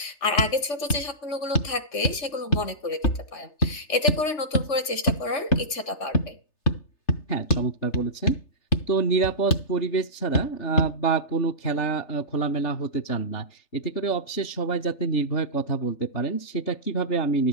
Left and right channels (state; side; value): late; right; 3.3 ms